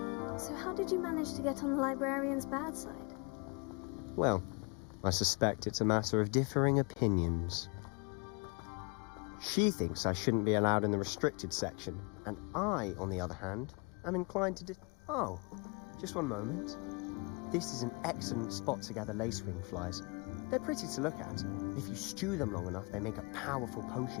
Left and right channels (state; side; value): quieter; right; 31.7 dB